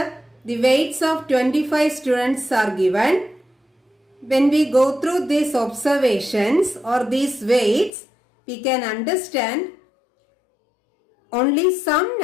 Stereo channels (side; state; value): right; drops out; at 7.9 s